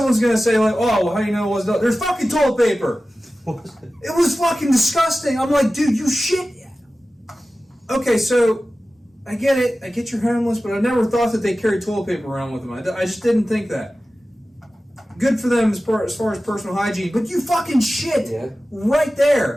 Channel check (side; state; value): both; normal; correlation 0.95